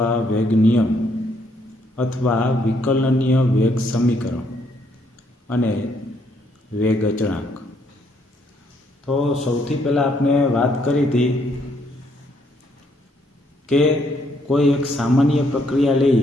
વેગ નિયમ અથવા વિકલનીય વેગ સમીકરણ અને વેગ અચળાંક. તો સૌથી પહેલાં આપણે વાત કરી હતી કે કોઈ એક સામાન્ય પ્રક્રિયા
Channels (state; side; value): normal; both; correlation 0.71